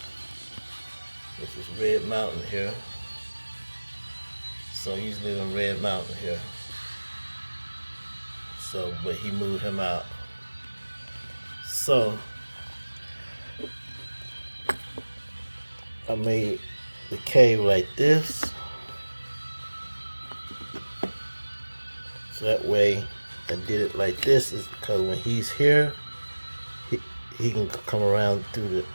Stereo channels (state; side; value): inverted; both; correlation -1.00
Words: This is Red Mountain here. So he usually live in Red Mountain here. So, but he moved him out. So I made the cave like this. So that way I did it like this is because when he's here, he can come around through